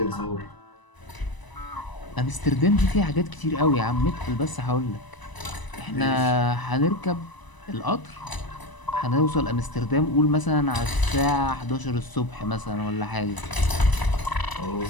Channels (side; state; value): right; late; 1.0 ms